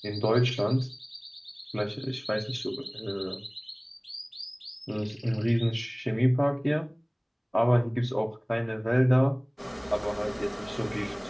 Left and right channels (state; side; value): identical; both; correlation 1.00